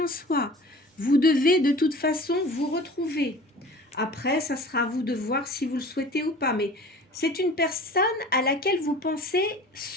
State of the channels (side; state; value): both; normal; correlation 0.42